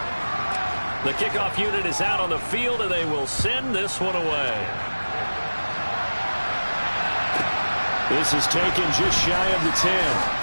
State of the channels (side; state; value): both; inverted; correlation -1.00